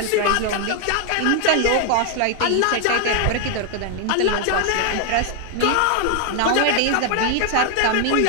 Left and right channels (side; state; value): both; different; correlation 0.00